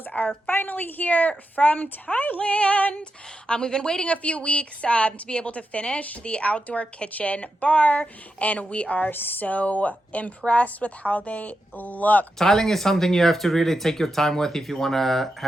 are finally here from Thailand. We've been waiting a few weeks to be able to finish the outdoor kitchen bar, and we are so impressed with how they look. Tiling is something you have to really take your time with if you want to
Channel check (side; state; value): both; normal; correlation 0.87